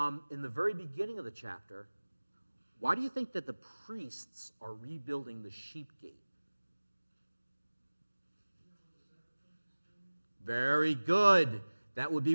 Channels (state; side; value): inverted; both; correlation -1.00